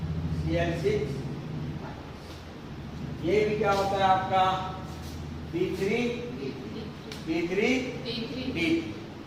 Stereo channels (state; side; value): identical; both; correlation 1.00